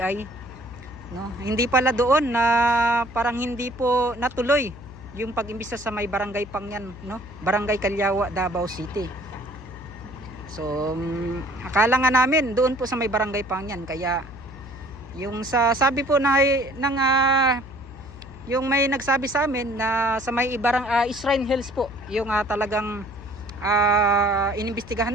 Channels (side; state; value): left; noise; hum, 16 dB below the sound